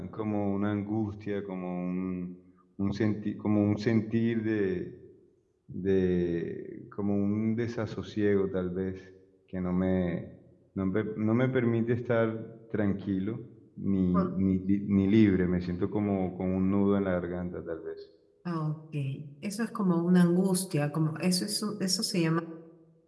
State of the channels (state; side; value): identical; both; correlation 1.00